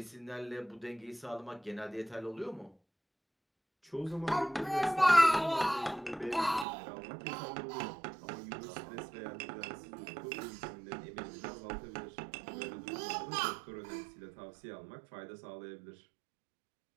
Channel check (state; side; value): drops out; left; at 6.7 s